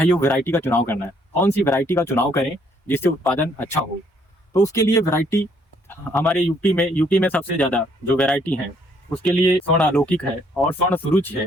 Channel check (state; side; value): normal; both; correlation 0.66